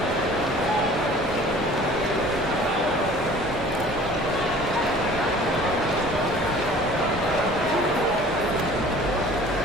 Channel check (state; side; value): normal; both; correlation 0.48